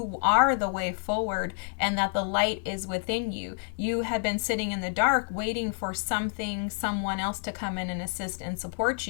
are the way forward and that the light is within you. You had been sitting in the dark waiting for someone else to come in and assist and support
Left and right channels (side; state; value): right; silent; 59 dB below the other